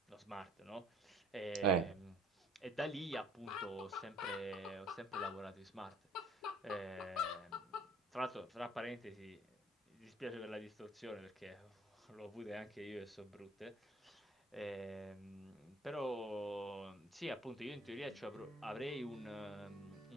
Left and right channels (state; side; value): normal; both; correlation 0.54